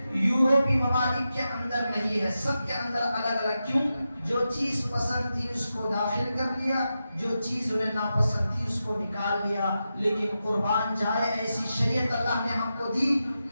یورپی ممالک کے اندر نہیں ہے، سب کے اندر الگ الگ۔ کیوں؟ جو چیز پسند تھی اس کو داخل کر لیا، جو چیز انہیں ناپسند تھی اس کو نکال لیا۔ لیکن قربان جائے ایسی شریعت اللہ نے ہم کو دی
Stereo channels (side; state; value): both; inverted; correlation -0.90